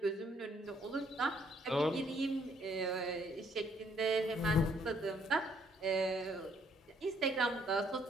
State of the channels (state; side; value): normal; both; correlation 0.67